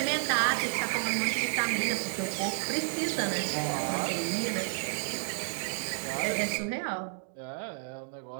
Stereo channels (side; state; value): left; silent; digital silence